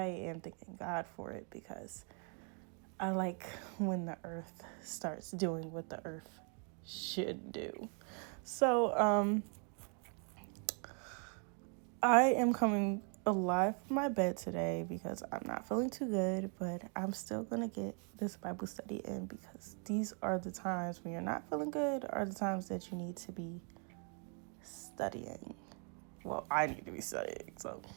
am thanking God for it because I like when the earth starts doing what the earth should do. So, I am coming alive from my bed today because I'm not feeling too good, but I'm still going to get this Bible study in because these are the times when you're not feeling good, are the times that you need to be studying. Well, I need to be studying. So,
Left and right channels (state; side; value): quieter; left; 39.9 dB